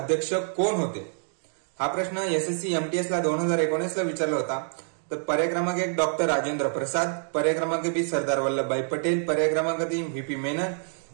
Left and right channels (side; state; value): left; silent; 60 dB below the other